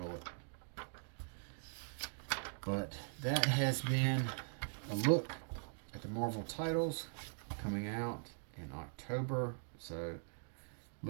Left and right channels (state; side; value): silent; left; digital silence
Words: But that has been a look at the Marvel titles coming out in October. So